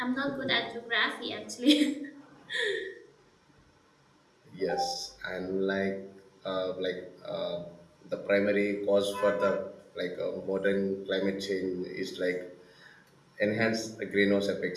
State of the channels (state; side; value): identical; both; correlation 1.00